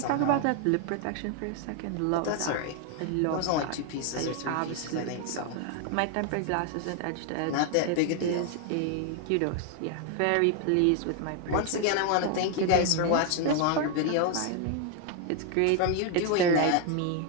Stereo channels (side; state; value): both; different; correlation 0.00